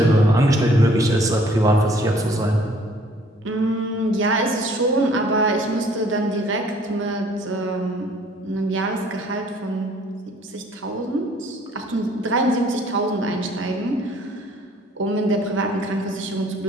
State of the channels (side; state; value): both; normal; correlation 0.58